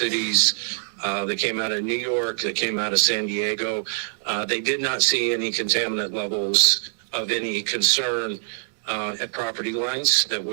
that came out of New York, that came out of San Diego, they did not see any contaminant levels of any concern at property lines that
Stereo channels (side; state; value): left; silent; digital silence